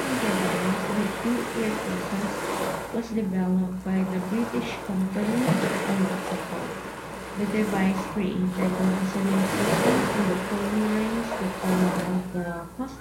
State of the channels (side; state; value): both; identical; correlation 1.00